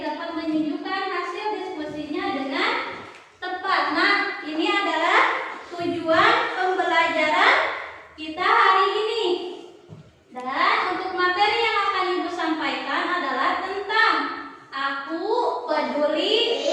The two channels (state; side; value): identical; both; correlation 1.00